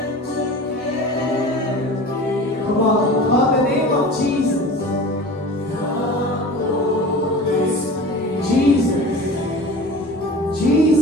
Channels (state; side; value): normal; both; correlation 0.36